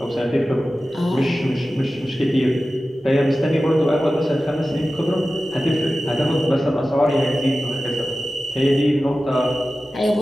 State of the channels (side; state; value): both; normal; correlation 0.95